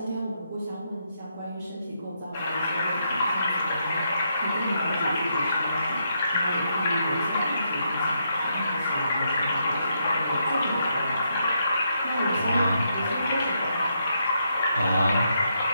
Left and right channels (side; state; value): both; inverted; correlation -0.79